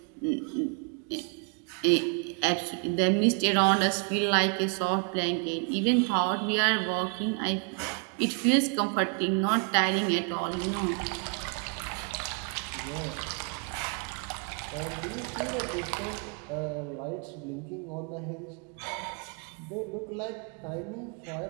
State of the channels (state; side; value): quieter; left; 39.8 dB